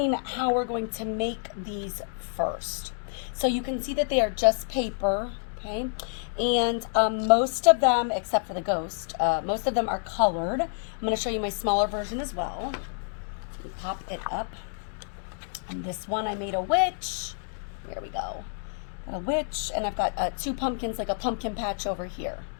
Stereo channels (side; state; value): right; silent; digital silence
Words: how we're going to make these first. So you can see that they are just paper, okay? And most of them, except for the ghost, most of them are colored. I'm going to show you my smaller version as well. Let me pop it up. And this one I made a witch. There we go. A witch, and I've got two pumpkins, like a pumpkin patch over here.